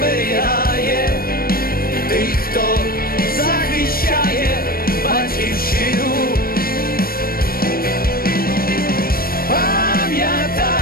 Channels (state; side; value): late; right; 0.43 ms